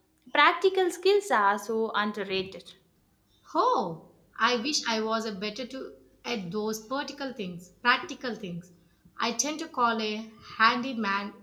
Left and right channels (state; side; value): identical; both; correlation 1.00